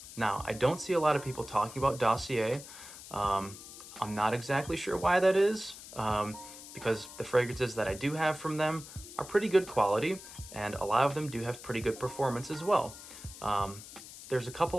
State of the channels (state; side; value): noise; left; hiss, 15 dB below the sound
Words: Now, I don't see a lot of people talking about Dossier. I'm not exactly sure why that is, because the fragrances that I do have from them are pretty good quality, and a lot of them do have pretty good performance as well. There's a